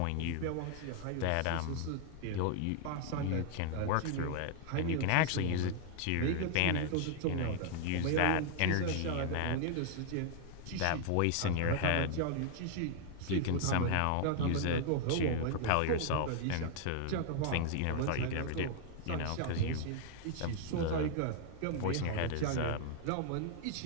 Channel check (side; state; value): both; different; correlation 0.00